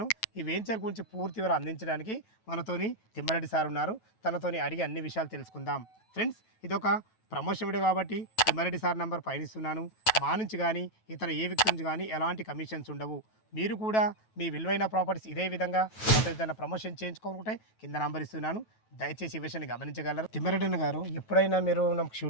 ఈ వెంచర్ గురించి పూర్తి వివరాలు అందించడానికి మనతోని తిమ్మారెడ్డి సార్ ఉన్నారు. తనతోని అడిగి అన్ని విషయాలు తెలుసుకుందాం. ఫ్రెండ్స్, ఇదొక ప్రమోషన్ వీడియో కాబట్టి తిమ్మారెడ్డి సార్ నంబర్ పైన ఇస్తున్నాను. మా నుంచి కానీ ఇతర ఏ వ్యక్తి నుంచి కానీ ఎలాంటి కమిషన్స్ ఉండవు. మీరు కూడా మీ విలువైన ప్రాపర్టీస్ ఇదే విధంగా మొత్తం ఏదైనా ప్రమోషన్ చేయించుకోనుకుంటే కింద నంబర్ ఇస్తున్నాను. దయచేసి ఈ విషయాన్ని గమనించగలరు. తిమ్మరెడ్డి గారు, ఎప్పుడైనా మీరు నాకు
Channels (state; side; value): late; right; 9.2 ms